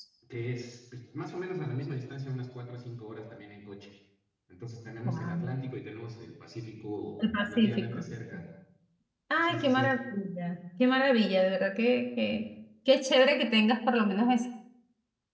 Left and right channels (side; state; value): both; identical; correlation 1.00